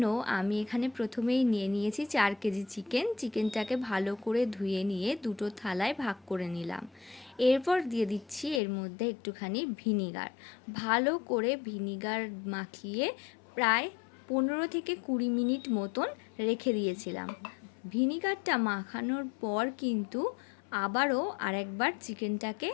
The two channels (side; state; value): right; drops out; at 8.6 s